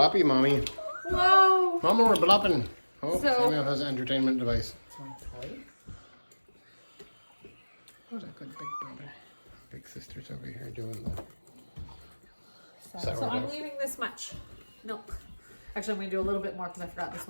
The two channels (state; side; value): inverted; both; correlation -1.00